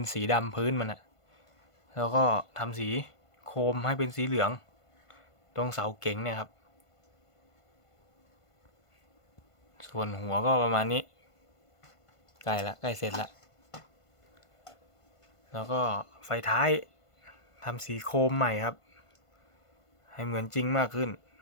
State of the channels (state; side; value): late; right; 1.5 ms